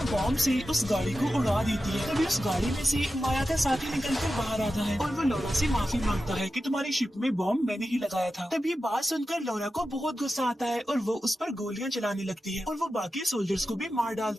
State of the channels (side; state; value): both; normal; correlation 0.92